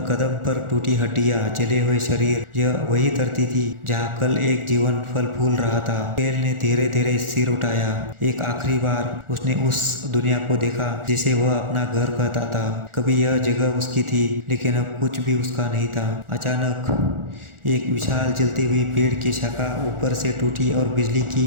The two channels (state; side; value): late; left; 1.4 ms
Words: कदम पर टूटी हड्डियां, जले हुए शरीर। यह वही धरती थी जहाँ कल एक जीवन फल फूल रहा था। केल ने धीरे धीरे सिर उठाया। एक आखिरी बार उसने उस दुनिया को देखा जिसे वह अपना घर कहता था। कभी यह जगह उसकी थी, लेकिन अब कुछ भी उसका नहीं था। अचानक एक विशाल जलती हुई पेड़ की शाखा ऊपर से टूटी और बिजली की